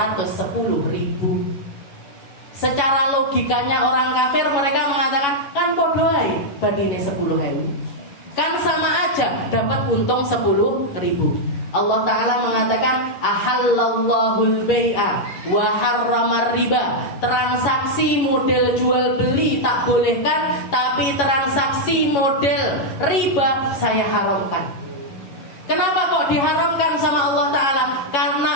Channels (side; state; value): right; late; 11 ms